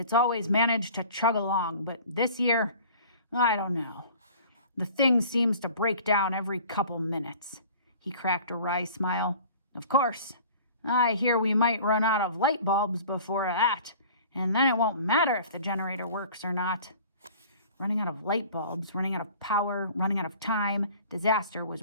always managed to chug along, but this year, I don't know. The thing seems to break down every couple minutes. He cracked a wry smile. Of course, I hear we might run out of light bulbs before that, and then it won't matter if the generator works or not. Running out of light bulbs, running out of power, running out of time, disaster was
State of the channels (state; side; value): inverted; both; correlation -0.46